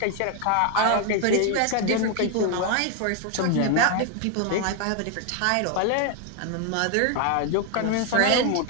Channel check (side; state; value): both; different; correlation 0.00